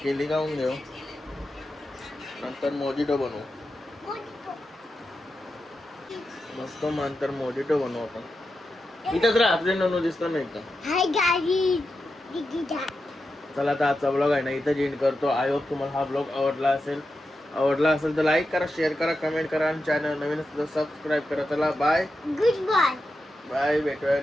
केली खाऊन घेऊ नंतर मोजिटो बनवू. मस्त नंतर मोजिटो बनवू आपण. इथंच राहा आपले ननू दिसतो नाही का. चला आता आजचा ब्लॉग आहे ना इथं एंड करतो. आय होप तुम्हाला हा ब्लॉग आवडला असेल तर लाईक करा शेअर करा कमेंट करा आणि चॅनल नवीन असेल तर सबस्क्राईब करा. चला बाय गुड बाय भेटूया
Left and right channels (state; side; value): normal; both; correlation 0.89